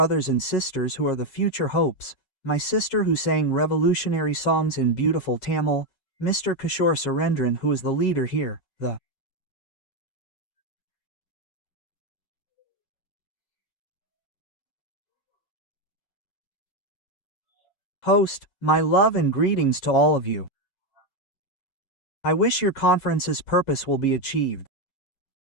and sisters who are the future hopes, my sister who sang revolutionary songs in beautiful Tamil, Mr. Kishore Surendran who is the leader here, the host, my love and greetings to all of you. I wish your conference's purpose will be achieved.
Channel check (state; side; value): late; right; 7.4 ms